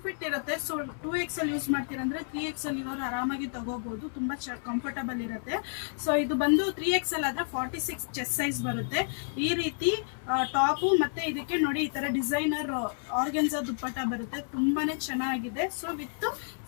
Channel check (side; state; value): right; silent; 58 dB below the other